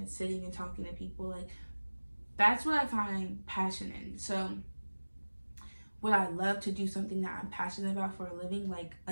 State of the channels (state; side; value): inverted; both; correlation -1.00